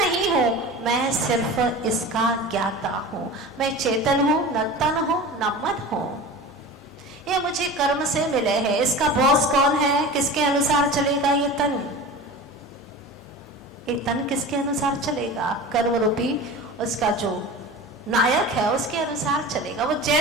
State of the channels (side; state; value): both; normal; correlation 0.34